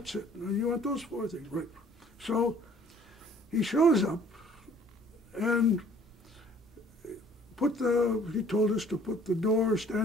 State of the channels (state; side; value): normal; both; correlation 0.56